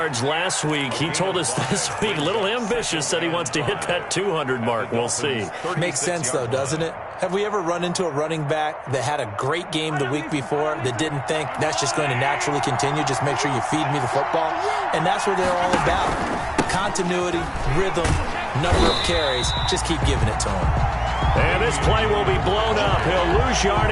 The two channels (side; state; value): both; identical; correlation 1.00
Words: last week. He told us this week, a little ambitious, said he wants to hit that 200 mark. We'll see. Makes sense, though, doesn't it? Have we ever run into a running back that had a great game the week before that didn't think that's just going to naturally continue? Just make sure you feed me the football. And that's what they're all about. Continuity, rhythm, number of carries. Just keep giving it to them. And this play will be blown up. He'll lose